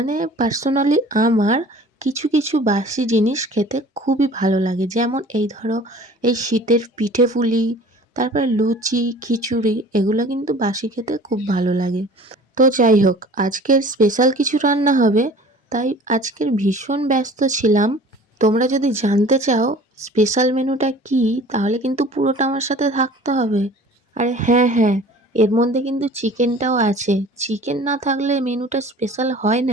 পার্সোনালি আমার কিছু কিছু বাসি জিনিস খেতে খুবই ভালো লাগে। যেমন এই ধরো, এই শীতের পিঠে পুলি, তারপর লুচি, খিচুড়ি, এগুলো কিন্তু বাসি খেতে খুব ভালো লাগে। তো যাই হোক, আজকের স্পেশাল কিছু রান্না হবে, তাই আজকের ভীষণ ব্যস্ত ছিলাম। তোমরা যদি জানতে চাও স্পেশাল মেনুটা কি, তাহলে কিন্তু পুরোটা আমার সাথে থাকতে হবে। আরে হ্যাঁ হ্যাঁ, এর মধ্যে কিন্তু চিকেনটাও আছে। চিকেন না থাকলে মেনুটা স্পেশাল হয়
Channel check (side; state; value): both; normal; correlation 0.46